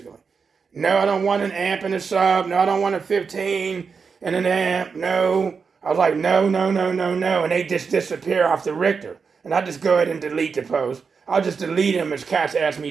No, I don't want an amp and a sub. No, I don't want a 15 and an amp. No. I was like, no. And they just disappear off the Richter. And I just go ahead and delete the post. I'll just delete them as cats ask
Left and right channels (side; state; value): left; quieter; 5.4 dB